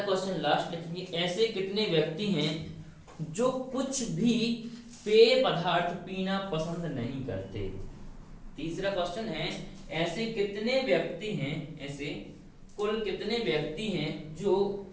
क्वेश्चन लास्ट लिखेंगे, ऐसे कितने व्यक्ति हैं जो कुछ भी पेय पदार्थ पीना पसंद नहीं करते। तीसरा क्वेश्चन है, ऐसे कितने व्यक्ति हैं, ऐसे कुल कितने व्यक्ति हैं जो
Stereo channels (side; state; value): both; identical; correlation 1.00